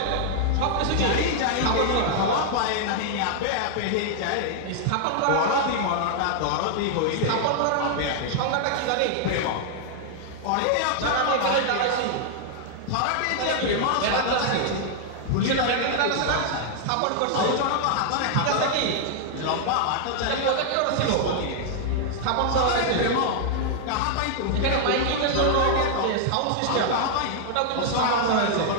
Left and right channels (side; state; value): both; different; correlation 0.00